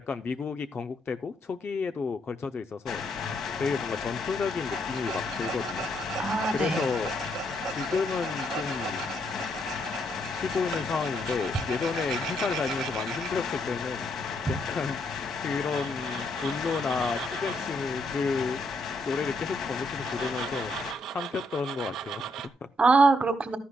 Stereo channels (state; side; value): normal; both; correlation 0.74